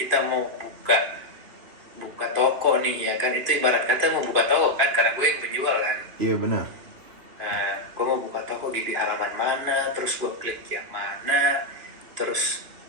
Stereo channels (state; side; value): late; left; 2.9 ms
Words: mau buka buka toko nih ya kan, itu ibarat kata mau buka toko kan karena gue yang penjual kan. Iya benar. Nah, gue mau buka toko di halaman mana, terus gue klik yang mana, terus